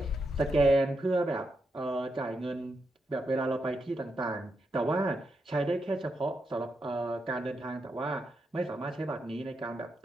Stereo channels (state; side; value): normal; both; correlation 0.84